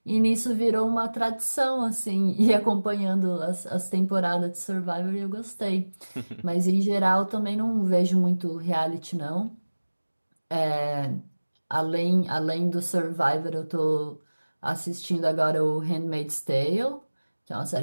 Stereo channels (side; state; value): both; inverted; correlation -1.00